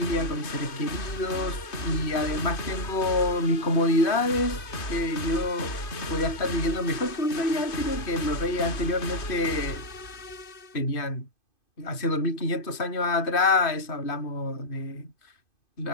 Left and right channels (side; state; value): right; late; 2.5 ms